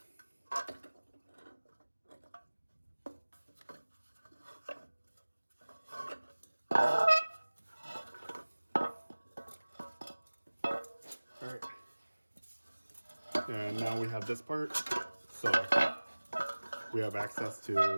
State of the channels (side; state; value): both; inverted; correlation -1.00